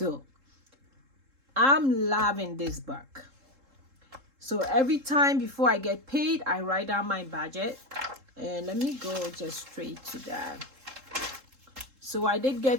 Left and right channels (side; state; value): left; late; 3.7 ms